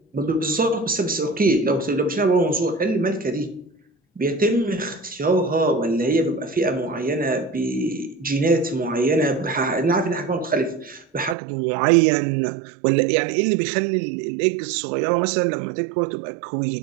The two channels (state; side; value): drops out; left; at 11.4 s